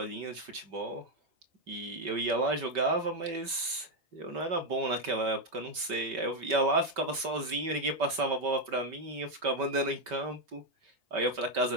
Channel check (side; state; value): left; late; 5.2 ms